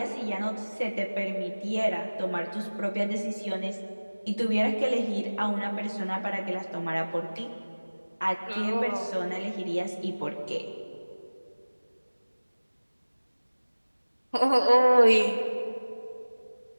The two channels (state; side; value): inverted; both; correlation -1.00